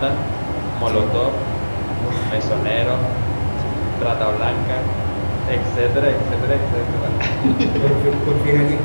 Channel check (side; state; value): both; inverted; correlation -1.00